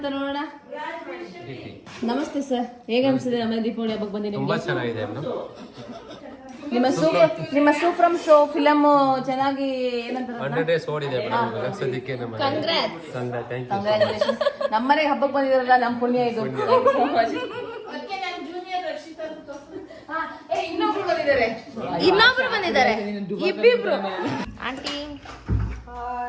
ನೋಡೋಣ. ನಮಸ್ತೆ ಸರ್, ಹೇಗೆ ಅನ್ಸಿದೆ ನಮ್ಮ ದೀಪಾವಳಿ ಹಬ್ಬಕ್ಕೆ ಬಂದಿ ತುಂಬಾ ಚೆನ್ನಾಗಿದೆ ಮೇಡಮ್. ನಿಮ್ಮ ಸೂಫ್ರಮ್ ಶೋ ಫಿಲಮ್ ಚೆನ್ನಾಗಿ ಏನಂತಾರೆ 100 days ಓಡಿದೆ ಮೇಡಮ್. ಇವಾಗ ಸದ್ಯಕ್ಕೆ ನಮ್ಮ ಕಂಗ್ರಾಚುಲೇಷನ್. ನಮ್ಮನೆಗೆ ಹಬ್ಬಕ್ಕೆ ಬಂದಿದಾರಲ್ಲ, ನಮ್ಮ ಪುಣ್ಯ ಇದು. ಇನ್ನೊಬ್ರು ಬಂದಿದ್ದಾರೆ, ಇಬ್ಬಿಬ್ರು. ಆಂಟಿ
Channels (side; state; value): both; identical; correlation 1.00